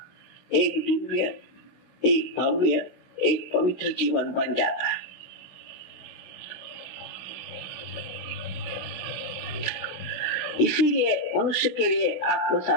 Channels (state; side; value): late; right; 16 ms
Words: एक दिव्य, एक भव्य, एक पवित्र जीवन बन जाता है। इसीलिए मनुष्य के लिए आत्म